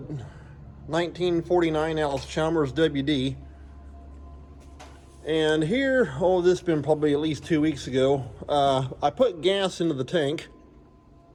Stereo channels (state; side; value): identical; both; correlation 1.00